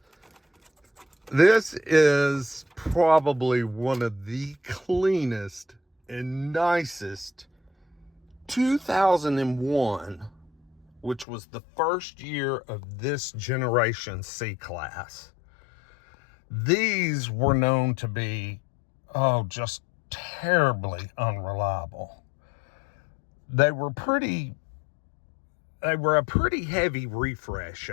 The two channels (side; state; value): right; drops out; at 11.2 s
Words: This is probably one of the cleanest and nicest 2001, which was the first year of this generation C-Class. These were known to be, just terribly unreliable. They were a pretty heavy refresh